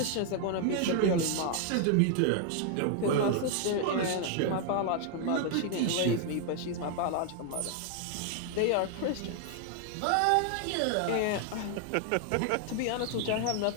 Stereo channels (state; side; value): different; both; correlation 0.00